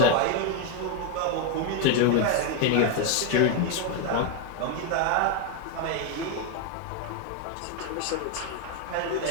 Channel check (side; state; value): both; different; correlation 0.01